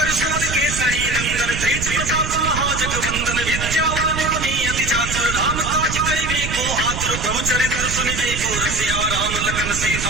सुत केसरी नंदन तेज प्रताप महाजगवंदन विद्यावान गुणी अति चातुर राम काज करिबे को आतुर प्रभु चरित्र सुनिबे को रसिया राम लखन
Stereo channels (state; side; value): noise; right; rumble, 5 dB below the sound